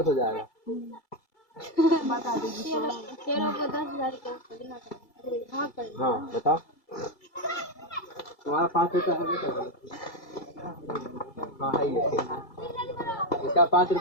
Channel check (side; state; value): right; late; 2.3 ms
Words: हो जाएगा। हाँ बताओ, तुम्हारा 5 रुपया है बेटा? हाँ है ये, इसका 5